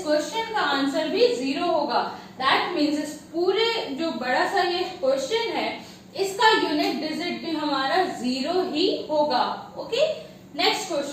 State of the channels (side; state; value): both; identical; correlation 1.00